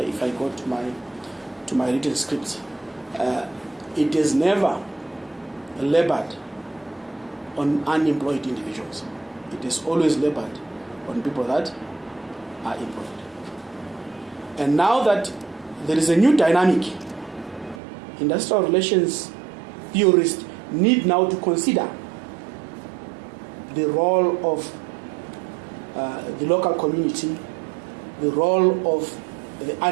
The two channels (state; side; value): drops out; left; at 17.8 s